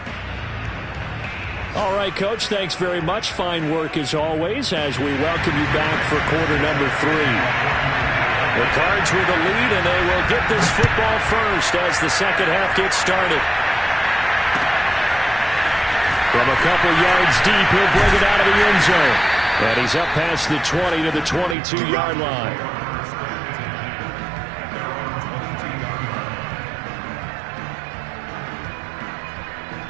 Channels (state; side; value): drops out; left; at 21.6 s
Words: All right, Coach, thanks very much. Fine work as always as we welcome you back for quarter number 3. The Cards with a lead, and they will get this football first as the second half gets started. From a couple yards deep, he'll bring it out of the end zone. And he's up past the 20 to the 22-yard line.